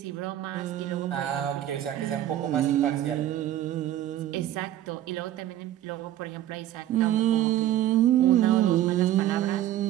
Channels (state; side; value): quieter; left; 12.7 dB